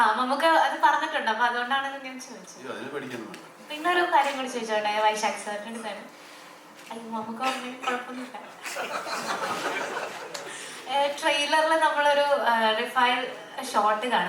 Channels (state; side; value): identical; both; correlation 1.00